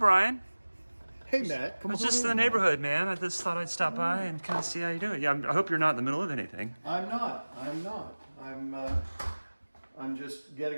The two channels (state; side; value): inverted; both; correlation -1.00